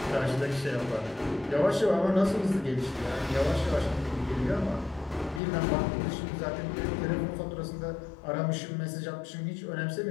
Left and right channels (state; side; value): drops out; right; at 5.4 s